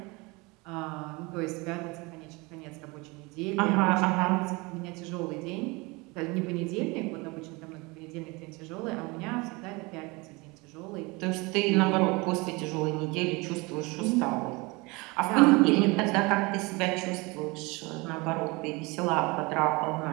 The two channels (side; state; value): left; quieter; 25.5 dB